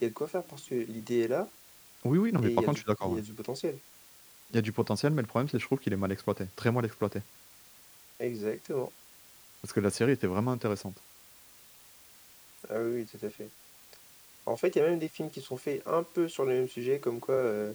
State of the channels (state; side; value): identical; both; correlation 1.00